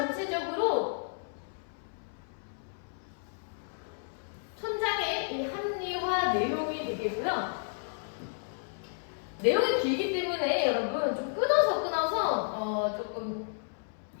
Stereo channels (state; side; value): silent; right; 56 dB below the other